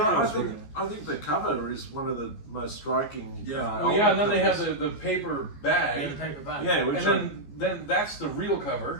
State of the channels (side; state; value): right; late; 14 ms